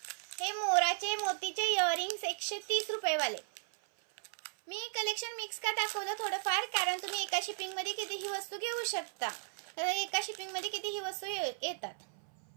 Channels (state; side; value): silent; left; 54 dB below the other